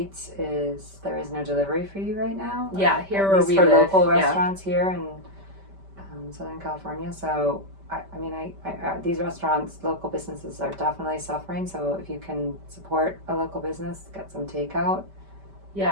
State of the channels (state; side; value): late; left; 5.1 ms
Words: there is no delivery fee right now. Yeah, here where we for live. Local restaurants here in Southern California. So I these restaurants, local businesses are definitely suffering. So if you can support a local business, get some takeout.